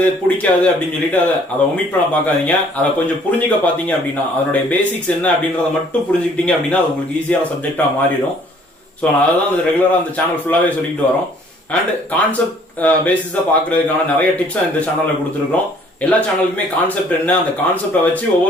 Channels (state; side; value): normal; both; correlation 0.59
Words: பிடிக்காது அப்படின்னு சொல்லிட்டு அதை ஒமிட் பண்ண பார்க்காதீங்க. அதை கொஞ்சம் புரிஞ்சுக்க பாத்தீங்க அப்படின்னா அதனுடைய பேசிக்ஸ் என்ன அப்படின்றத மட்டும் புரிஞ்சுக்கிட்டீங்க அப்படின்னா அது உங்களுக்கு ஈஸியான சப்ஜெக்டா மாறிடும். ஸோ நான் அதான் ரெகுலரா அந்த சேனல் ஃபுல்லாவே சொல்லிட்டு வரோம். அண்ட் கான்செப்ட் பேசிஸா பாக்குறதுக்கான நிறைய டிப்ஸ் இந்த சேனல்ல கொடுத்துருக்கோம். எல்லா சேனலுக்குமே கான்செப்ட் என்ன, அந்த கான்செப்டை வச்சு